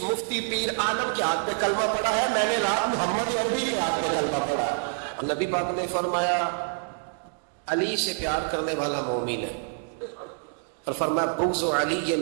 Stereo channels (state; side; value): silent; left; digital silence